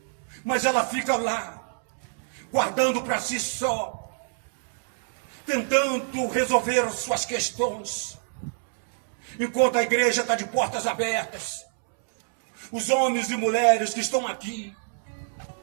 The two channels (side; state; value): left; silent; 61 dB below the other